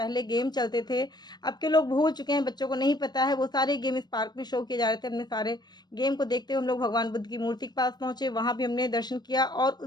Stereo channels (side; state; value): right; late; 0.20 ms